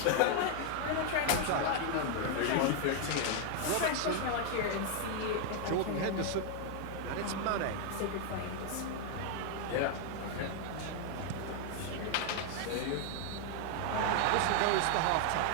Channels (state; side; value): different; both; correlation 0.00